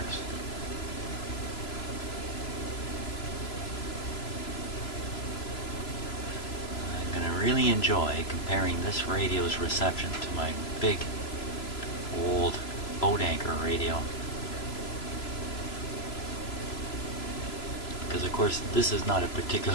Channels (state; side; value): late; right; 3.0 ms